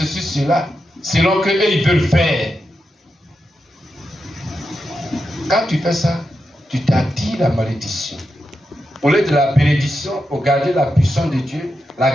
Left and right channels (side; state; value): both; normal; correlation 0.87